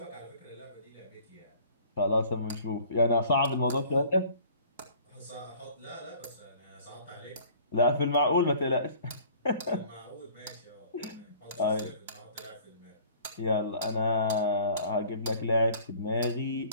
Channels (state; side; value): inverted; both; correlation -0.50